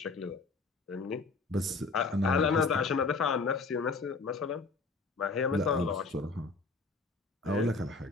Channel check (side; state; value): right; quieter; 4.0 dB